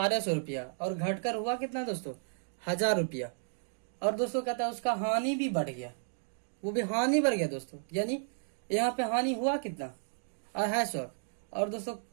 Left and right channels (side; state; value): left; silent; digital silence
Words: रुपया और घटकर हुआ कितना दोस्तों? 1000 रुपया, और दोस्तों कहता है उसका हानि भी बढ़ गया, वो भी हानि बढ़ गया दोस्तों, यानी यहाँ पे हानि हुआ कितना? 250, और दोस्तों